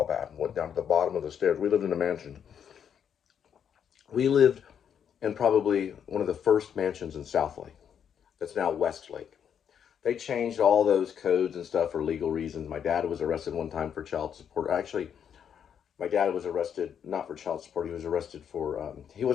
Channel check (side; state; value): right; quieter; 8.2 dB